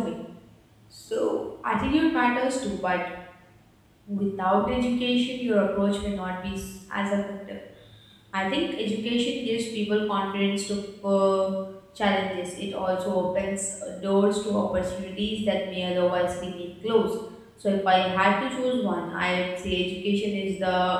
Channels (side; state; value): both; identical; correlation 1.00